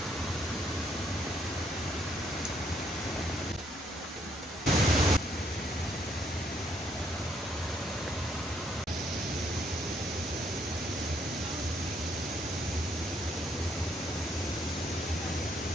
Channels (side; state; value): both; normal; correlation 0.71